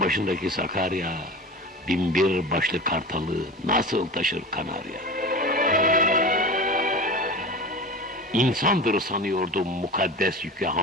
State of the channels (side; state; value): both; normal; correlation 0.31